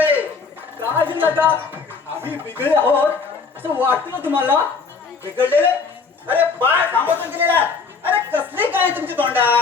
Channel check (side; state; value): right; quieter; 4.9 dB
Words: काय झालं का आम्ही बिघडले आहोत असं वाटतं ना तुम्हाला? बिघडलेले? अरे बाळ थांबवून गेलेला. अरे कसली काय तुमची